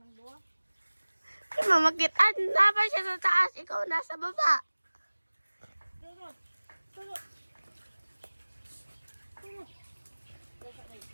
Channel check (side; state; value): both; inverted; correlation -1.00